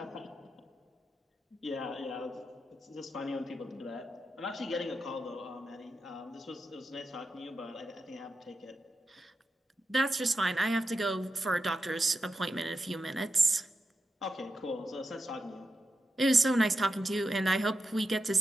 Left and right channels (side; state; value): both; normal; correlation 0.89